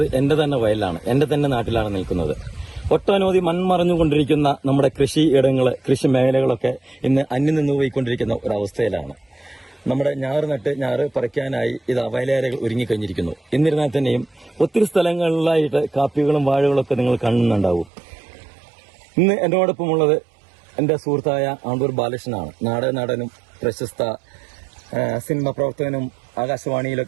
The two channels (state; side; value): drops out; left; at 17.9 s